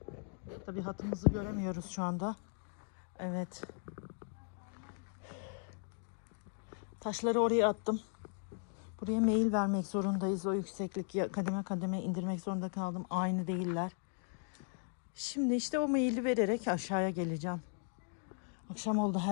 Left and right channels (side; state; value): right; silent; 53 dB below the other